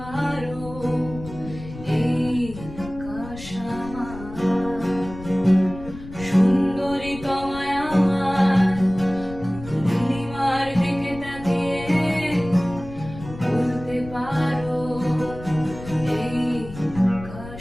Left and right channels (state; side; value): noise; left; rumble, 14 dB below the sound